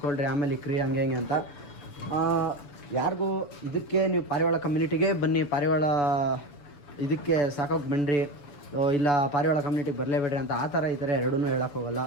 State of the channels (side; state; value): right; late; 7.0 ms